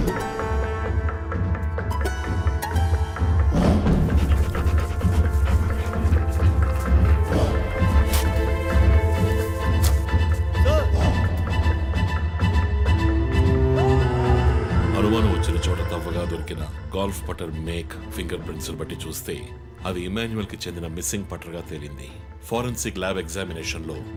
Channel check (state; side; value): identical; both; correlation 1.00